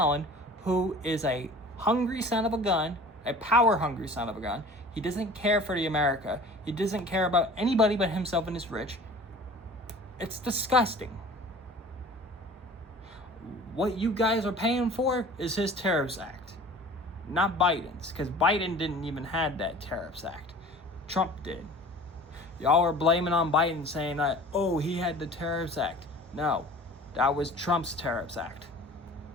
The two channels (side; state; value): both; normal; correlation 0.43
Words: who is a hungry son of a gun, a power hungry son of a gun. He doesn't care for the America. He doesn't care about anybody but himself and his rich. It's disgusting. What you guys are paying for is his Tariffs Act, not Biden's, because Biden didn't even have that Tariffs Act. Trump did. Y'all are blaming on Biden, saying that, oh, he had the Tariffs Act. No, that was Trump's Tariffs Act.